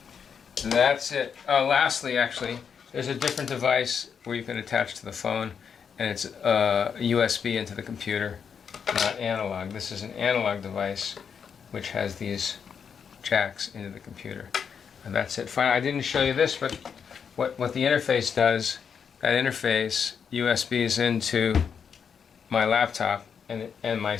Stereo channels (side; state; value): right; quieter; 6.9 dB